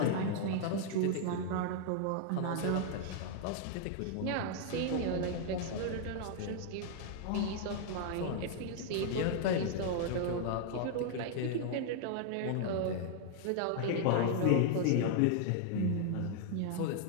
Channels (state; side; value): different; both; correlation -0.01